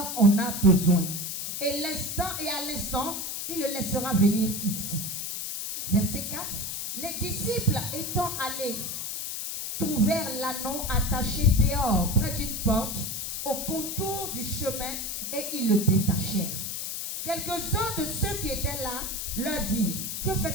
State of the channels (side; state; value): left; noise; hiss, 4 dB below the sound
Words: en a besoin. Et à l'instant, il le laissera venir ici. Verset 4. Les disciples étant allés, trouvèrent l'anneau attaché dehors, près d'une porte, au contour du chemin, et ils le détachèrent. Quelques-uns de ceux qui étaient là leur dirent: que